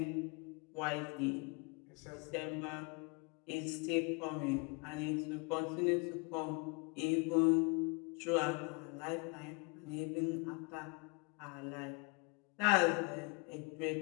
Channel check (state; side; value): quieter; right; 32.0 dB